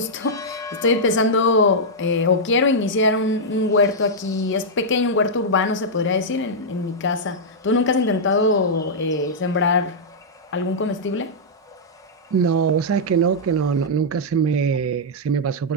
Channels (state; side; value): normal; both; correlation -0.08